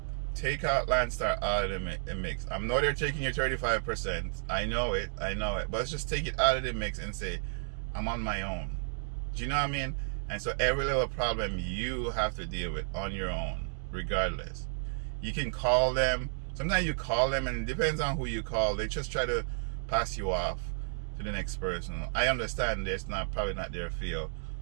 take out Landstar out of the mix. I know they're taking your 35%. I know it. But let's just take it out of the mix and say, I'm on my own. Do you know what I mean? And so every little problem you have to deal with on your own, regardless. You can call them. Sometimes you call them, and it depends on who you call. They just try to pass you off to the next person. I understand it's probably not their field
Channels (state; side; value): silent; left; digital silence